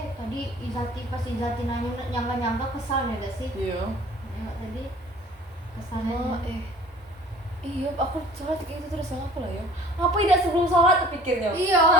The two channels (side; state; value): both; normal; correlation 0.49